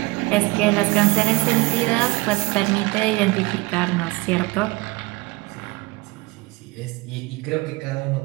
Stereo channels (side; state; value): left; quieter; 22.8 dB